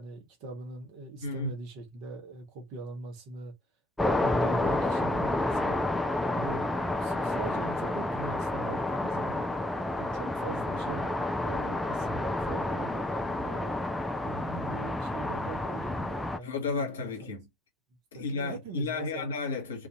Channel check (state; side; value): normal; both; correlation 0.68